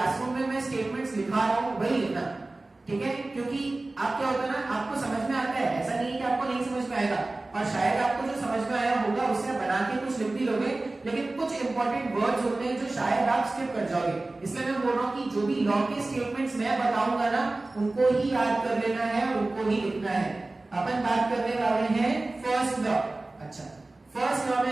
में मैं स्टेटमेंट्स लिखा रहा हूं वही लिखना, ठीक है। क्योंकि आप क्या होता है ना, आपको समझ में आता है, ऐसा नहीं है कि आपको नहीं समझ में आएगा, और शायद आपको जो समझ में आया होगा उससे बना के कुछ लिख भी लोगे, लेकिन कुछ इंपॉर्टेंट वर्ड्स होते हैं जो शायद आप स्किप कर जाओगे। इसलिए मैं बोल रहा हूं कि जो भी लॉ के स्टेटमेंट्स मैं बताऊंगा ना, उनको ही याद कर लेना है और उनको ही लिखना है। अपन बात करने वाले हैं फर्स्ट लॉ। अच्छा, फर्स्ट लॉ में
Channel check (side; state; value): left; quieter; 3.0 dB